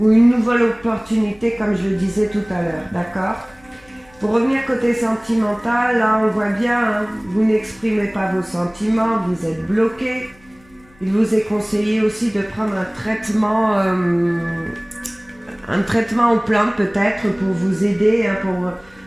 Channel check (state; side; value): noise; left; hum, 29 dB below the sound